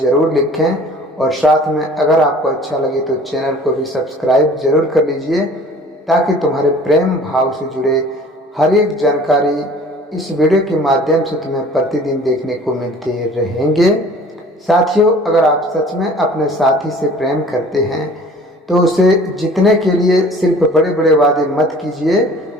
लिखें। और साथ में अगर आपको अच्छा लगे तो चैनल को भी सब्सक्राइब जरूर कर लीजिए ताकि तुम्हारे प्रेम भाव से जुड़े हर एक जानकारी इस वीडियो के माध्यम से तुम्हें प्रतिदिन देखने को मिलते रहेंगे। साथियों अगर आप सच में अपने साथी से प्रेम करते हैं तो उसे जीतने के लिए सिर्फ बड़े बड़े वादे मत कीजिए,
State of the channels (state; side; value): normal; both; correlation 0.49